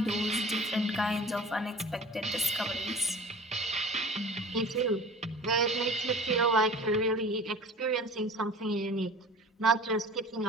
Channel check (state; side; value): normal; both; correlation 0.41